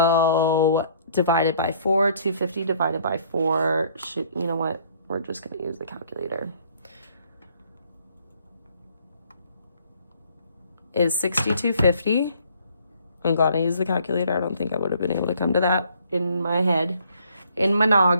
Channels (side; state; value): both; inverted; correlation -0.61